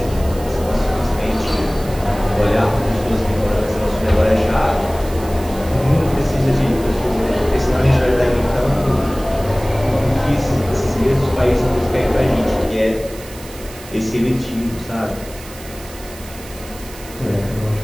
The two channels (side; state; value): right; noise; hiss, 17 dB below the sound